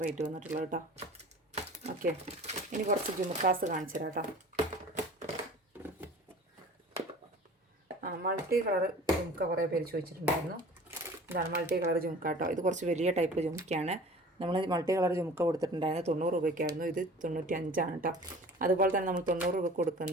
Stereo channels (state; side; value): normal; both; correlation 0.43